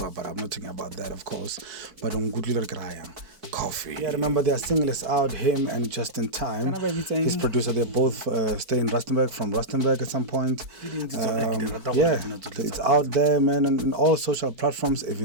but I'm not talking about that, of course. But on good little coffee. Yeah, remember their single is out, him and Justun Time. His producer, they both stay in Rustenburg, from Rustenburg at some point. Yeah, it's out there, man, on all social platforms,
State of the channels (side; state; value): left; late; 4.5 ms